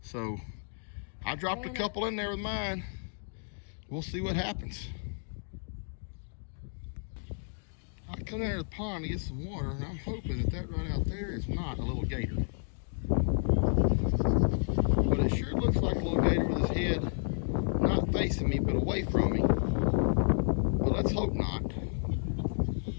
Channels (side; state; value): right; silent; digital silence